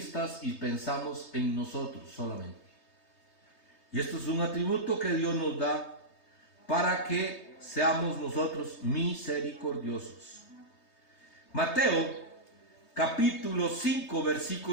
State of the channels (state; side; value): late; right; 3.2 ms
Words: y pensamos en nosotros solamente. Y esto es un atributo que Dios nos da para que seamos nosotros misericordiosos. Mateo capítulo 5,